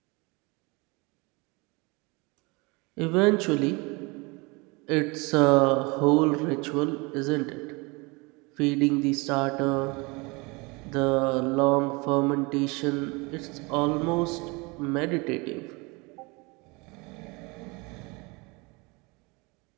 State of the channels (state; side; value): quieter; left; 27.0 dB